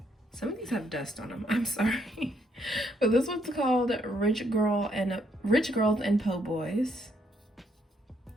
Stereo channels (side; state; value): both; normal; correlation 0.72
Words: some of these have dust on them, I'm sorry. But this one's called Rich Girls and Po' Boys.